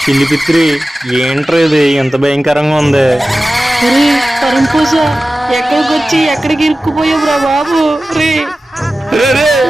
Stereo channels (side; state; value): both; normal; correlation 0.95